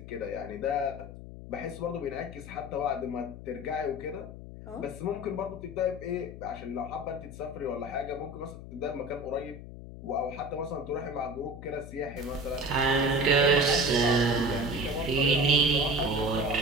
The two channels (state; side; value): noise; left; hum, 13 dB below the sound